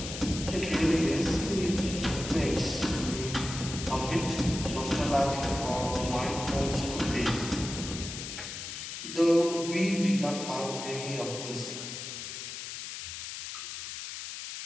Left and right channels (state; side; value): noise; left; hiss, 8 dB below the sound